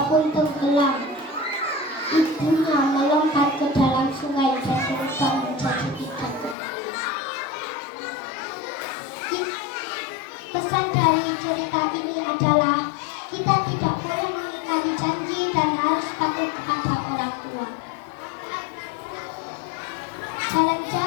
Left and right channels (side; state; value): right; drops out; at 6.6 s